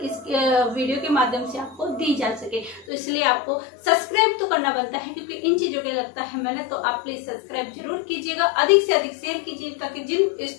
इस वीडियो के माध्यम से आपको दी जा सके। तो इसलिए आपको सब्सक्राइब तो करना बनता है, क्योंकि इन चीजों के लगता है मैंने, तो आप प्लीज सब्सक्राइब जरूर कीजिएगा, अधिक से अधिक शेयर कीजिए ताकि जिन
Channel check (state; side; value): drops out; right; at 2.9 s